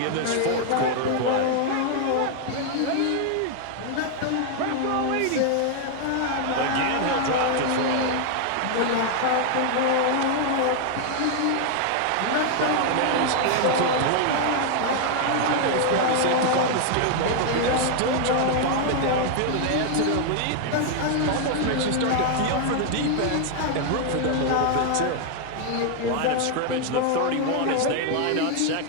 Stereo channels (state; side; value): different; both; correlation 0.00